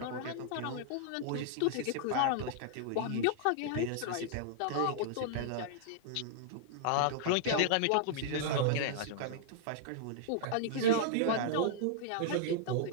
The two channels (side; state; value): both; different; correlation -0.01